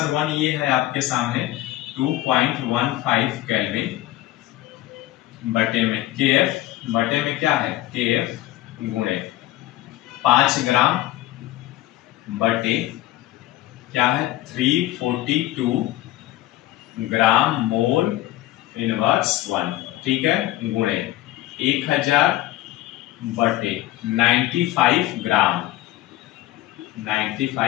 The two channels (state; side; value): quieter; right; 15.8 dB